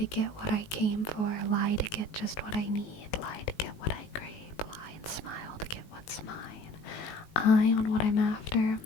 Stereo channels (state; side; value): late; right; 18 ms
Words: get what I came for, lie to get just what I need, lie to get what I crave, lie and smile to get what's mine. Eye on what I'm after,